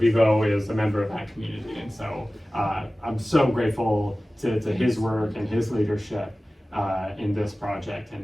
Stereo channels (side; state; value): both; normal; correlation 0.97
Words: is a member of that community, and so I'm so grateful to his work and his leadership in this project,